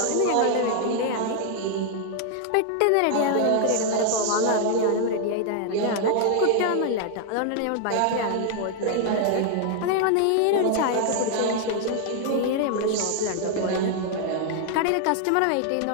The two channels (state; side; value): different; both; correlation 0.00